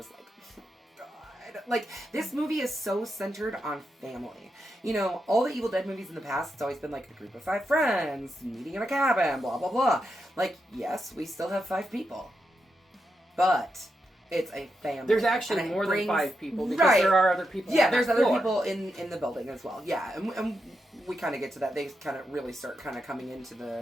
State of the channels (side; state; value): both; normal; correlation 0.85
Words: like, God. Like, this movie is so centered on family. You know, all the Evil Dead movies in the past, it's always been like a group of 5 friends, meeting in a cabin, blah, blah, blah. Like, yes, we still have 5 people. But it's a family. There's actually more than 5 people, because there are other people there's other people in the building as well. Yeah, and we kind of get to that. They kind of really start kind of coming into